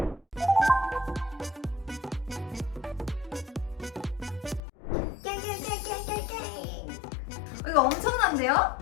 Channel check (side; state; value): right; drops out; at 4.6 s